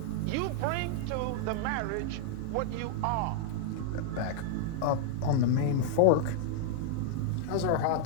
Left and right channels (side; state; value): both; different; correlation -0.01